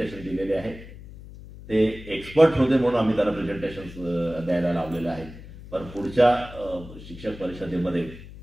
दिलेले आहे. ते एक्सपर्ट होते म्हणून आम्ही त्यांना प्रेझेंटेशन्स द्यायला लावलेले आहेत. पण पुढच्या शिक्षक परिषदेमध्ये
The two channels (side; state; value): left; noise; hum, 16 dB below the sound